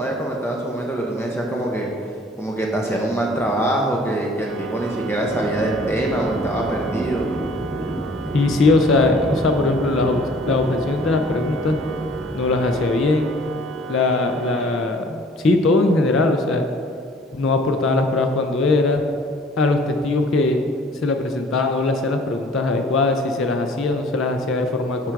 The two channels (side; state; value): both; normal; correlation 0.53